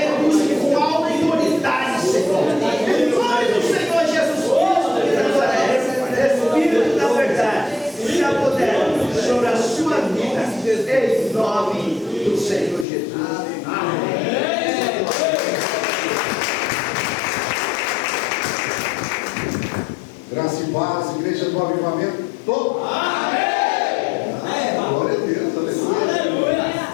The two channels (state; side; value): drops out; right; at 12.9 s